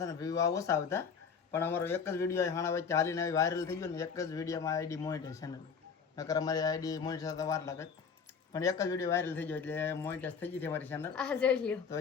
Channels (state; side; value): quieter; right; 6.1 dB